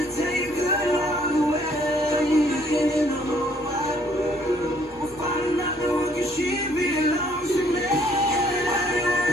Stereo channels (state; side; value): normal; both; correlation 0.63